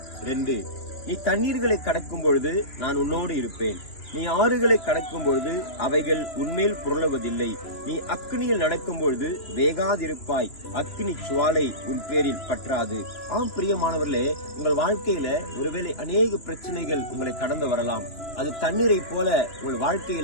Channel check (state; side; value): late; right; 2.8 ms